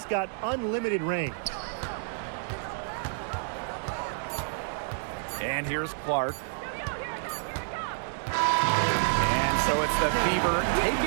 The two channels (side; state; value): left; silent; digital silence